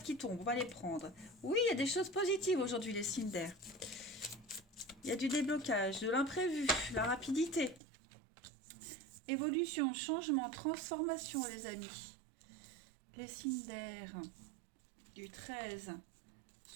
qui tombent. On va les prendre. Oui, il y a des choses positives aujourd'hui, les signes d'air. Il y a du déblocage, de l'imprévu, la rapidité. Évolution, changement, transformation, les amis. Les signes d'air du 13.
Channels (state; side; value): drops out; left; at 7.8 s